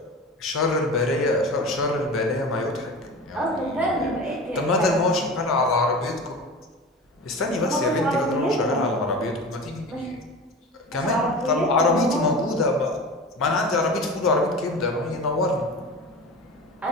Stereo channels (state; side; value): normal; both; correlation 0.33